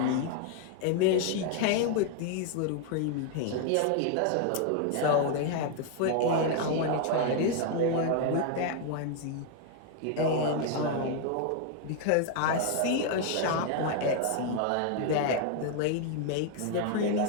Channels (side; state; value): both; different; correlation 0.00